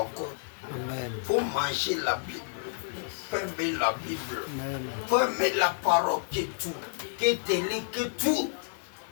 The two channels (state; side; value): silent; right; 56 dB below the other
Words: encore. Il faut manger la Bible. Il faut aimer la Bible. Il faut aimer la parole que tout. Que télé, que tout.